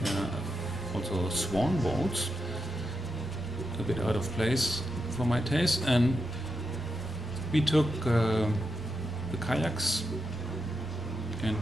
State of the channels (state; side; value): normal; both; correlation 0.86